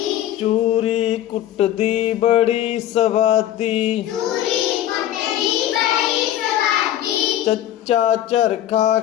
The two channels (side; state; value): right; quieter; 12.3 dB